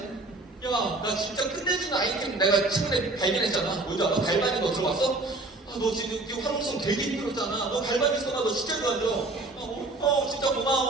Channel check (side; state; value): left; quieter; 3.0 dB